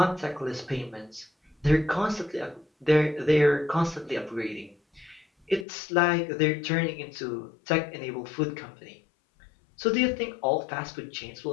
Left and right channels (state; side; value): drops out; right; at 5.7 s